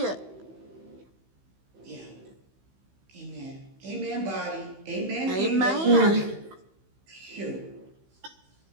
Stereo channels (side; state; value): left; late; 15 ms